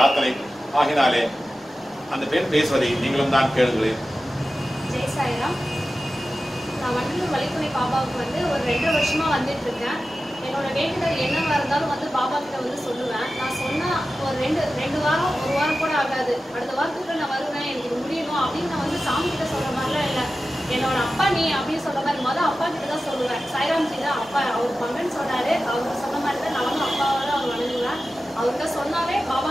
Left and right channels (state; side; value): normal; both; correlation 0.94